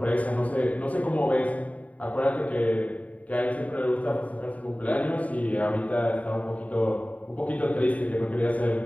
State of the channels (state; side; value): late; right; 0.069 ms